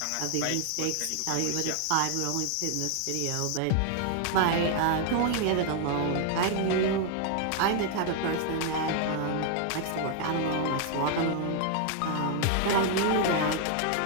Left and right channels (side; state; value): both; different; correlation 0.00